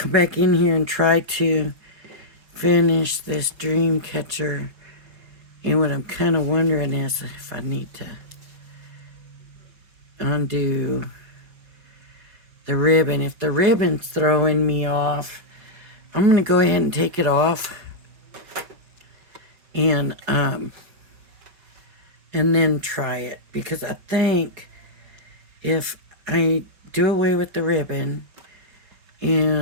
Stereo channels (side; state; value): left; late; 4.8 ms